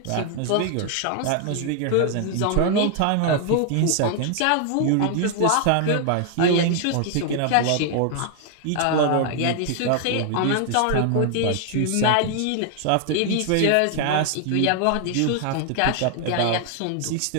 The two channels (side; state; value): both; different; correlation 0.00